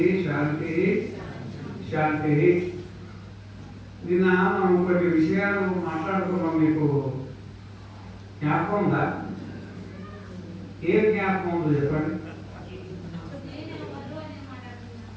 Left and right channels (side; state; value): both; identical; correlation 1.00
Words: शांति शांति। నిన్న మనం కొన్ని విషయాలు మాట్లాడుకున్నాం. మీకు జ్ఞాపకం ఉందా? ఏ జ్ఞాపకం ఉందో చెప్పండి.